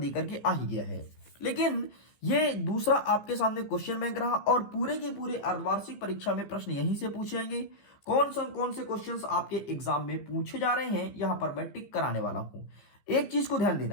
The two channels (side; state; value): right; late; 15 ms